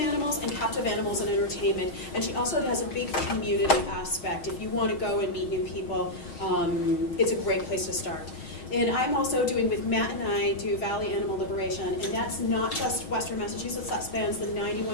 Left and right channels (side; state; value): right; late; 6.8 ms